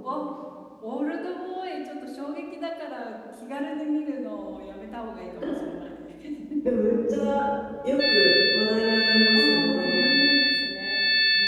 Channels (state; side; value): identical; both; correlation 1.00